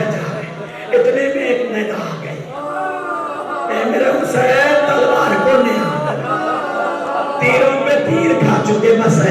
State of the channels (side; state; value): both; identical; correlation 1.00